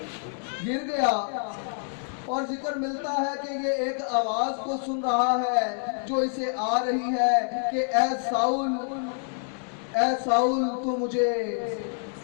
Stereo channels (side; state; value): right; silent; 60 dB below the other